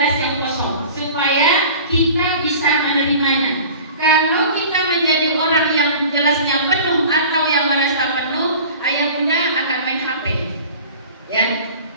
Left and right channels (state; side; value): inverted; both; correlation -0.41